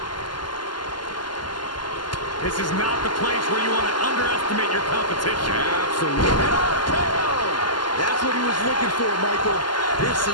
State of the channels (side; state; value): right; late; 0.71 ms